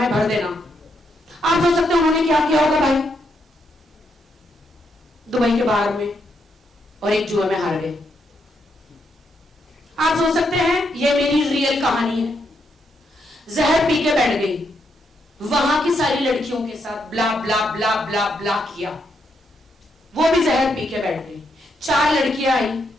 भर देना। आप सोच सकते हैं उन्होंने क्या किया होगा भाई दुबई के बाहर में, और एक जुए में हार गए। आप सोच सकते हैं ये मेरी रियल कहानी है। जहर पी के बैठ गई, वहां की सारी लड़कियों के साथ ब्ला ब्ला ब्ला ब्ला ब्ला किया, वो भी जहर पी के बैठ गई। 4 लड़कियां आई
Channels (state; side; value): normal; both; correlation 0.79